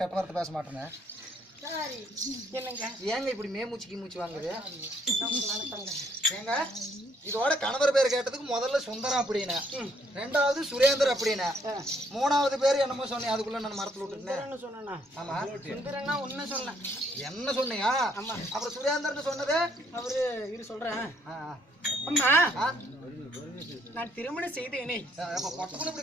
கெட்ட வார்த்தை பேச மாட்டேன்னு என்னங்க ஏங்க இப்படி மேமூச்சிக்கு மூச்சு வாங்குது ஏங்க இதோட கணவர் பேர் கேட்டதுக்கு முதல்ல சுந்தரம் அப்படின்னு ரெண்டாவது சுரேந்தர் அப்படின்னு மூணாவது பேர் என்னமோ சொன்னேன் அதுக்குள்ள நான் மரத்துல விட்டுட்டேன் சொன்னா ஆமா சுந்தரன்னா உன்ன சொன்னேன் என்ன சொன்னியா ஆமா அப்புறம் சுரேந்தர்னு சொன்னது அவரு இரு சொல்றேன் அம்மா நான் திருமணம் செய்தேனே பொட்டக்குள்ள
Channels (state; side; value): normal; both; correlation 0.68